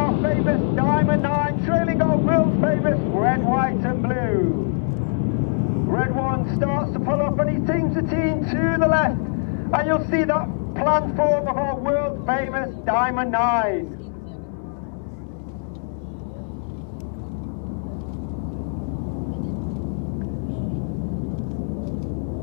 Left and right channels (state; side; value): silent; right; digital silence